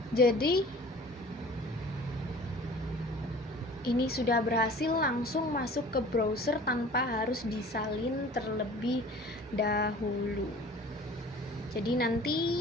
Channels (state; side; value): normal; both; correlation 0.45